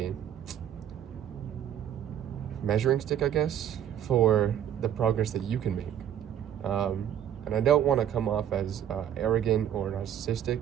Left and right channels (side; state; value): left; quieter; 10.1 dB